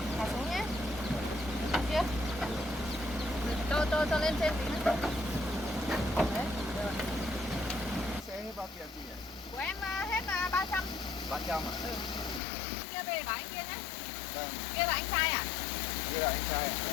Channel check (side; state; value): right; drops out; at 12.4 s